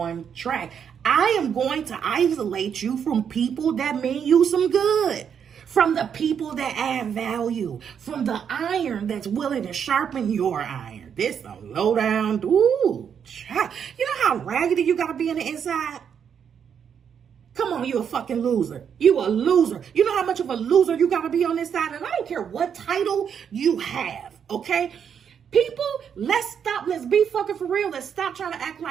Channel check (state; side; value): quieter; left; 7.7 dB